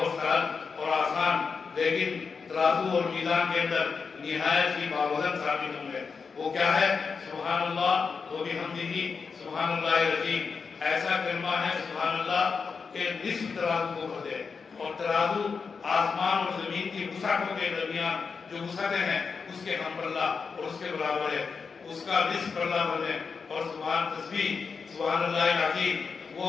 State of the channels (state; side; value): quieter; right; 5.3 dB